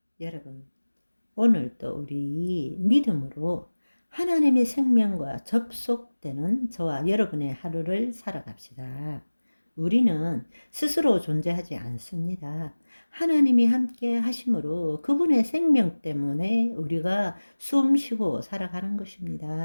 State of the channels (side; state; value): both; inverted; correlation -1.00